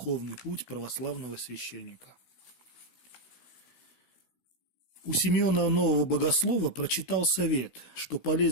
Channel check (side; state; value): right; late; 16 ms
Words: путь православного священника». У Симеона Нового Богослова прочитал совет, что